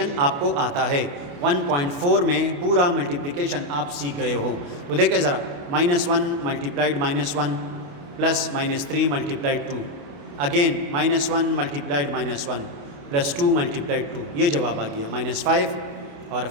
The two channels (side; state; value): left; late; 28 ms